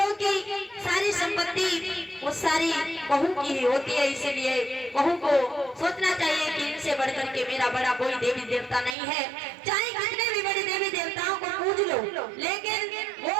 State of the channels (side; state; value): left; drops out; at 9.0 s